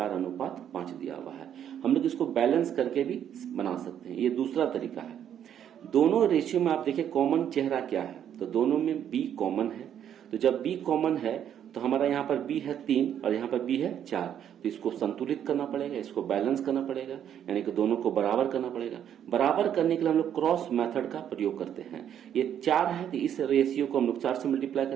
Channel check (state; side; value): quieter; left; 9.6 dB